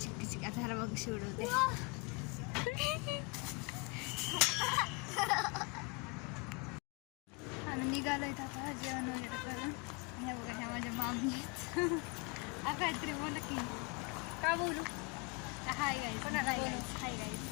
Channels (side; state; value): right; quieter; 29.7 dB